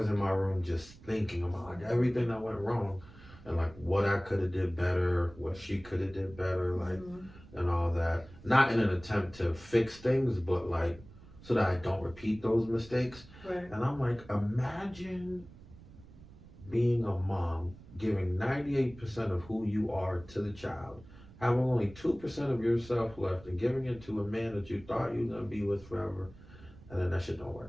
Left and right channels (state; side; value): noise; right; rumble, 20 dB below the sound